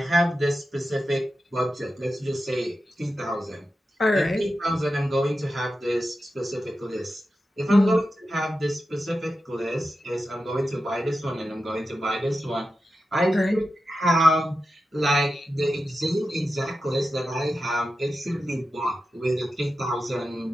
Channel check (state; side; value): normal; both; correlation 0.91